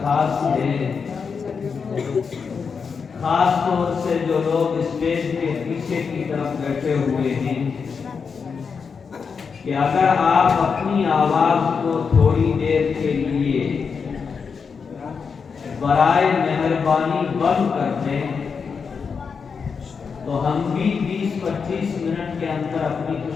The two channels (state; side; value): quieter; right; 5.7 dB